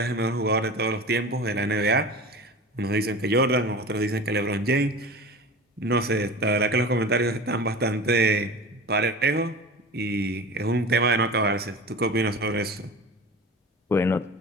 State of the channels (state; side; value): normal; both; correlation 0.34